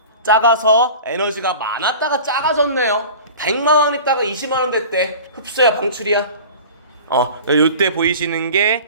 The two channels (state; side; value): inverted; both; correlation -0.38